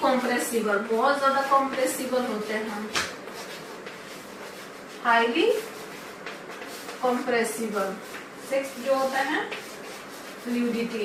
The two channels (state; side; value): identical; both; correlation 1.00